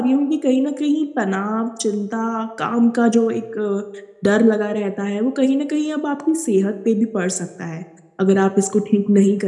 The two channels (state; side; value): identical; both; correlation 1.00